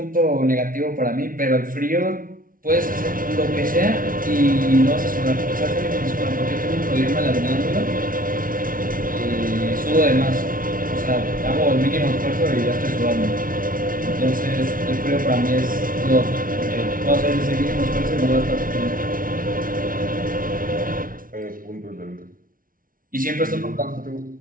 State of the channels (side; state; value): left; late; 0.40 ms